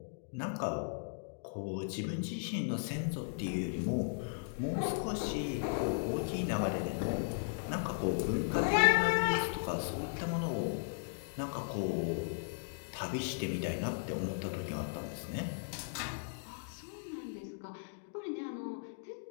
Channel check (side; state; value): right; silent; digital silence